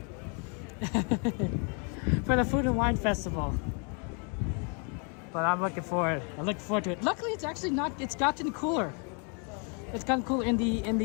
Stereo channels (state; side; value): quieter; right; 37.2 dB